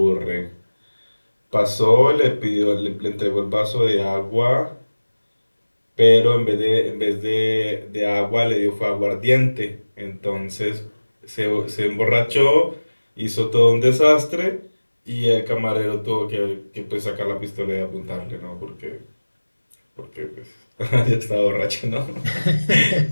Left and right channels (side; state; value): both; inverted; correlation -1.00